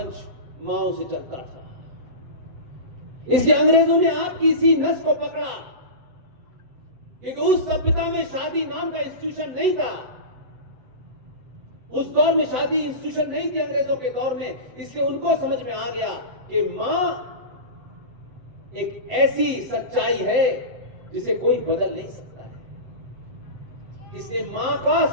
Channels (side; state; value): left; late; 7.9 ms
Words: माओं से चलता था। इसलिए अंग्रेजों ने आपकी इसी नस को पकड़ा, क्योंकि उस सभ्यता में शादी नाम का इंस्टीट्यूशन नहीं था। उस दौर में शादी इंस्टीट्यूशन नहीं थी अंग्रेजों के दौर में। इसलिए उनको समझ में आ गया कि मां एक ऐसी सच्चाई है जिसे कोई बदल नहीं सकता है। इसलिए मां का